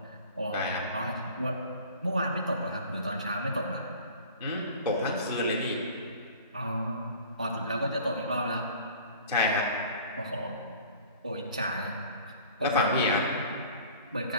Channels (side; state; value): both; inverted; correlation -0.45